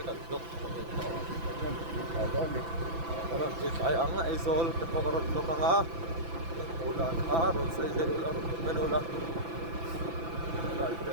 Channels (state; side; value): late; left; 6.0 ms